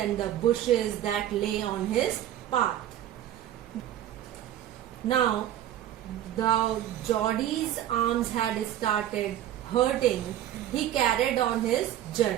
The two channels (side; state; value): left; quieter; 11.9 dB